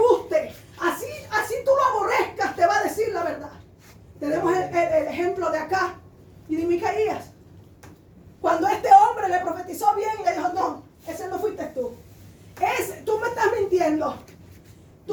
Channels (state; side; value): identical; both; correlation 1.00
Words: Así tú lo aborrezcas, te va a decir la verdad. Tenemos el ejemplo de acá y de Micaías. Cuando este hombre le profetizó bien, le dijo, no, ese no fuiste tú. Tú me estás mintiendo.